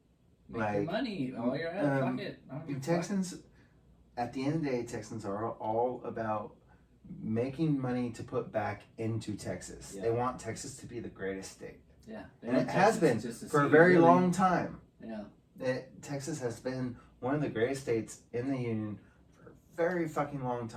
Make your money while you're at it. Fuck it. I don't give a fuck. Texans, at the end of the day, Texans are all about making money to put back into Texas. Yeah. They want Texas to be the greatest state. Yeah. And it has been for a very long time. Yeah. Texas has been one of the greatest states in the union for a very fucking long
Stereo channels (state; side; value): identical; both; correlation 1.00